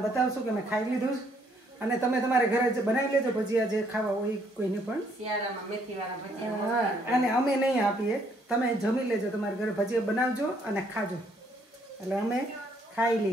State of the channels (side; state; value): both; normal; correlation 0.68